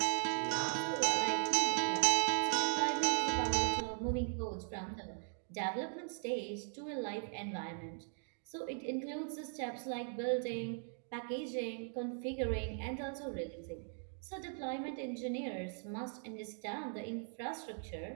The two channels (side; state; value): left; silent; 52 dB below the other